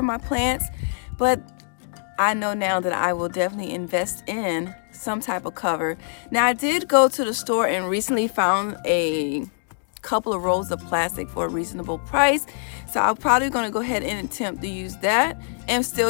my plants, but I know now that I will definitely invest in some type of cover. Now I did go to the store and recently found a couple of rolls of plastic for a reasonable price. So I'm probably going to go ahead and attempt to use that and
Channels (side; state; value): right; silent; 63 dB below the other